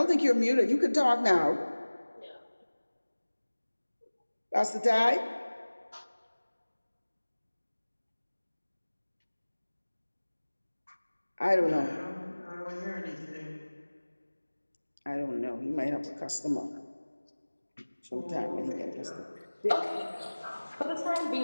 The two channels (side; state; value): both; inverted; correlation -1.00